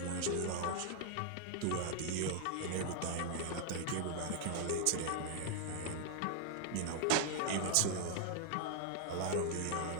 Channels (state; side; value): different; both; correlation -0.01